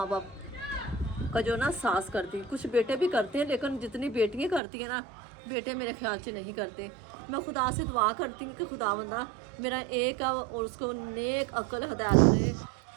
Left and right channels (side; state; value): left; drops out; at 4.6 s